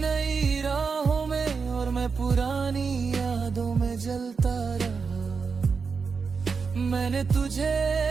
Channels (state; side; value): quieter; left; 5.3 dB